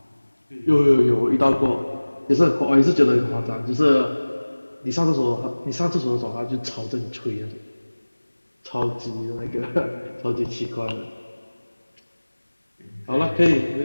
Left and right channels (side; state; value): both; inverted; correlation -1.00